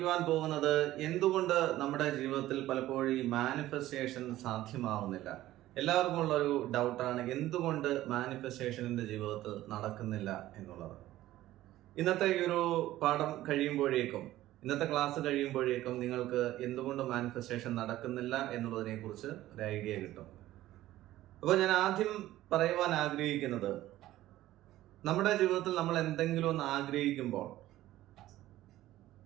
പോകുന്നത് എന്തുകൊണ്ട് നമ്മുടെ ജീവിതത്തിൽ പലപ്പോഴും ഈ മാനിഫെസ്റ്റേഷൻ സാധ്യമാവുന്നില്ല. എല്ലാവർക്കും ഉള്ള ഒരു ഡൗട്ടാണ് എന്തുകൊണ്ട് മാനിഫെസ്റ്റേഷനിന്റെ ജീവിതത്തിൽ നടക്കുന്നില്ല എന്നുള്ളത്. ഇന്നത്തെ ഈ ഒരു പാഠം കഴിയുമ്പോഴേക്കും, ഇന്നത്തെ ക്ലാസ് കഴിയുമ്പോഴേക്കും നിങ്ങൾക്ക് എന്തുകൊണ്ട് മാനിഫെസ്റ്റേഷൻ നടക്കുന്നില്ല എന്നുള്ളതിനെ കുറിച്ച് ഒരു ഐഡിയ കിട്ടും. അപ്പോൾ ഞാൻ ആദ്യം പറയുവാൻ ആഗ്രഹിക്കുന്നത്, നമ്മുടെ ജീവിതത്തിൽ നമ്മൾ എന്തെങ്കിലും ഒന്ന് ആഗ്രഹിക്കുമ്പോൾ,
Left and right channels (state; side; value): quieter; left; 15.1 dB